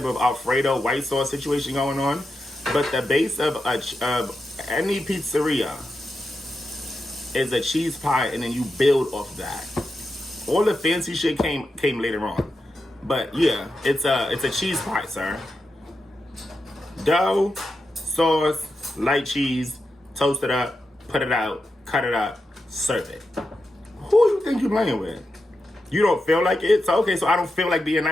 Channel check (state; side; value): normal; both; correlation 0.88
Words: of Alfredo white sauce situation going on. But the base of any pizzeria is a cheese pie, and then you build off that. All the fancy shit came later on. But yeah, it's a cheese pie, sir. Dough, sauce, light cheese, toast it up, put it out, cut it up, serve it. Who you think you're playing with? You don't feel like it? So okay, so I don't feel like being